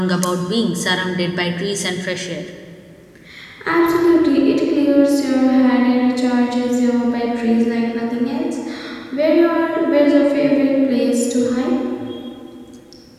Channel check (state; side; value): identical; both; correlation 1.00